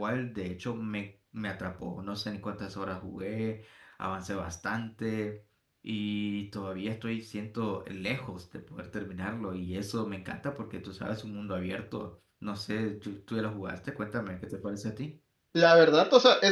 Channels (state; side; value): identical; both; correlation 1.00